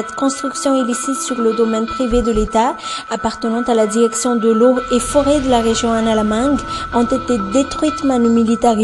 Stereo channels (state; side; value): identical; both; correlation 1.00